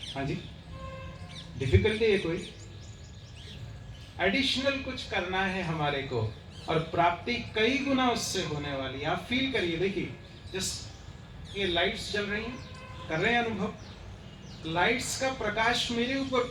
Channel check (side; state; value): both; identical; correlation 1.00